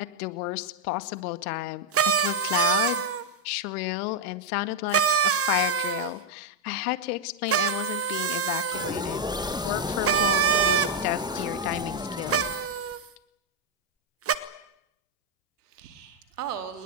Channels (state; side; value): normal; both; correlation 0.01